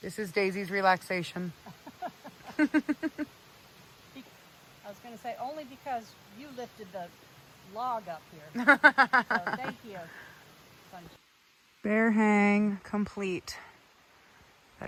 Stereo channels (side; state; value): both; identical; correlation 1.00